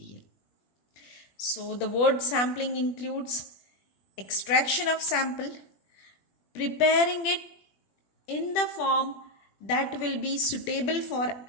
So the word sampling includes extraction of sample, preparing it in the form that will be suitable for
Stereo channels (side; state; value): right; late; 21 ms